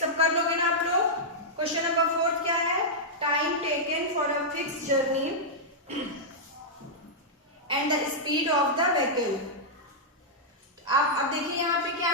कर लोगे ना आप लोग? क्वेश्चन नंबर 4 क्या है? Time taken for a fix journey and the speed of the vehicle. आप अब देखिए यहाँ पे क्या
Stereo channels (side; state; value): both; normal; correlation -0.08